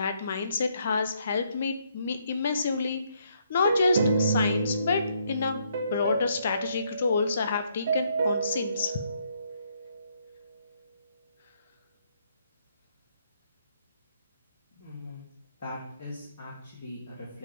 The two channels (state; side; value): inverted; both; correlation -0.72